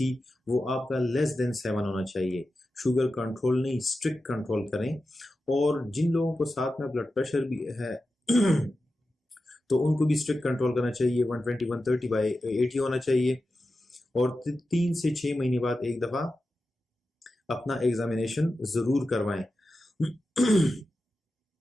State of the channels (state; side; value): normal; both; correlation 0.92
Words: وہ آپ کا لیس دین 7 ہونا چاہیے۔ شوگر کنٹرول نہیں، اسٹرکٹ کنٹرول کریں۔ اور جن لوگوں کو ساتھ میں بلڈ پریشر بھی ہے تو ان کو بھی اسٹرکٹ کنٹرول کرنا چاہیے، 120 130/80 ہونا چاہیے۔ اور 3 سے 6 مہینے بعد ایک دفعہ اپنا ایگزامینیشن ضرور کروائیں۔